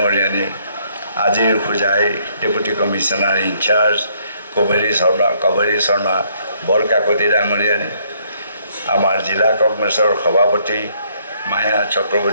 আজিৰ Hojai deputy commissioner in-charge Kaberi Sharma Barkakati ডাঙৰীয়ানী, আমাৰ জিলা কংগ্ৰেছৰ সভাপতি মায়া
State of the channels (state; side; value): inverted; both; correlation -0.68